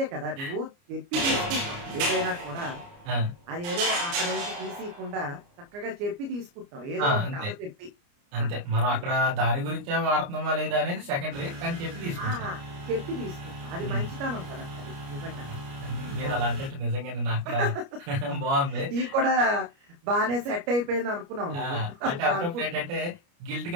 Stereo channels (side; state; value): left; late; 29 ms